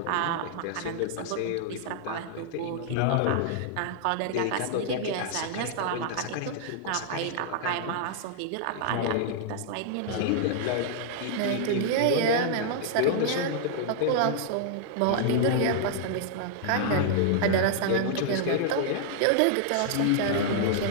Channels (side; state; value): both; different; correlation -0.01